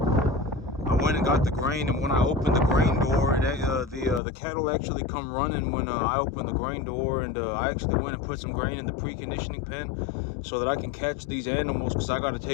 I went and got the grain, and when I opened the grain door, the cattle actually come running when I opened the grain door, and I actually went and put some grain in the preconditioning pen so that I can catch these animals, because I got to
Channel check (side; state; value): right; drops out; at 4.2 s